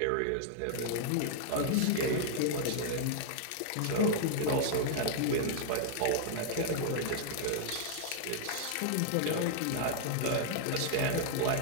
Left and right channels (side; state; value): both; different; correlation -0.01